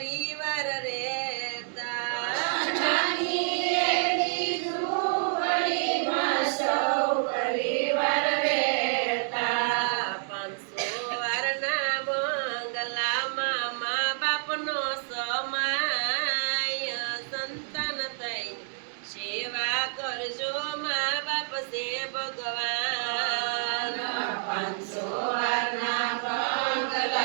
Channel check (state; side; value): silent; left; digital silence